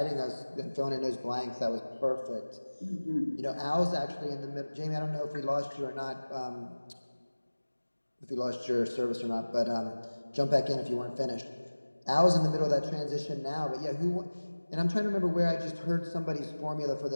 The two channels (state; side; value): inverted; both; correlation -1.00